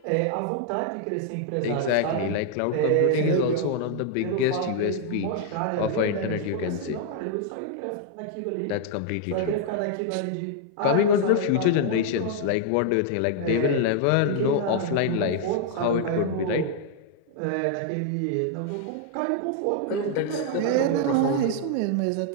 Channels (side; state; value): both; different; correlation 0.00